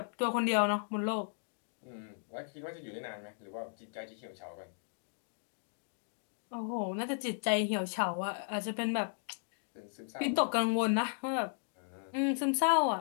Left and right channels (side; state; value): right; silent; digital silence